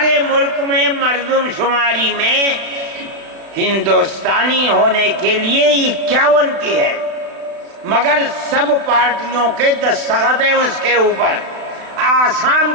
ملک میں مردم شماری میں ہندوستانی ہونے کے لیے 51 کی ہے, مگر سب پارٹیوں کے دستخط ہیں اس کے اوپر. آسام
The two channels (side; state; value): left; late; 35 ms